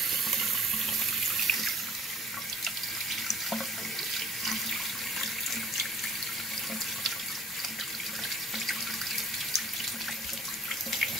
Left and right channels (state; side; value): normal; both; correlation 0.54